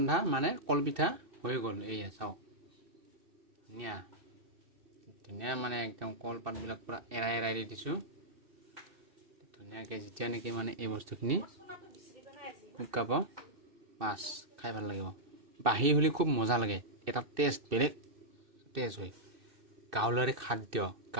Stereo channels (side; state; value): left; late; 2.6 ms